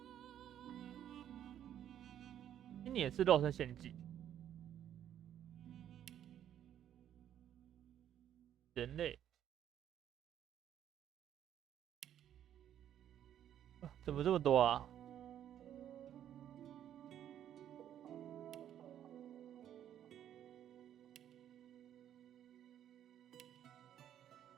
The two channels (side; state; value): left; quieter; 10.5 dB